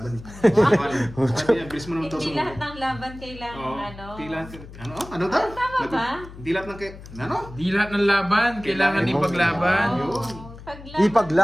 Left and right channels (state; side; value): noise; left; hum, 16 dB below the sound